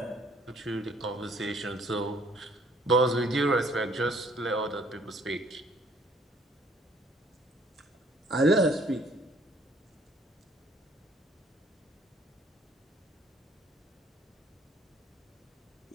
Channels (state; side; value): normal; both; correlation 0.60